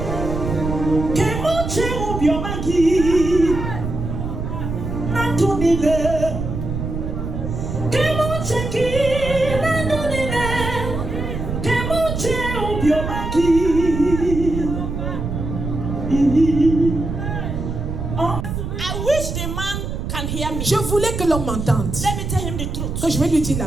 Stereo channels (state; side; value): noise; right; rumble, 4 dB below the sound